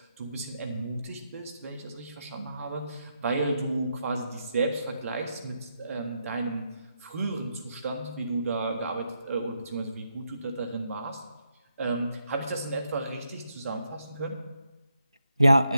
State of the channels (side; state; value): both; inverted; correlation -0.81